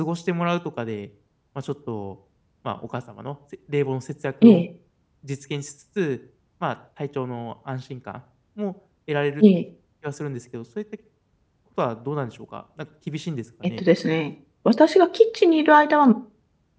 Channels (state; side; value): identical; both; correlation 1.00